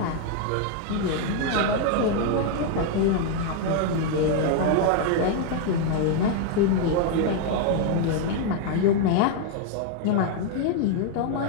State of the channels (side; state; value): both; different; correlation 0.00